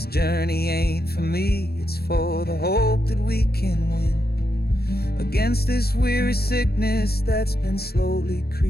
journey ain't for me, it's for the hope that we can win against this weary sickness that's been slowly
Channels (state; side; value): late; right; 0.46 ms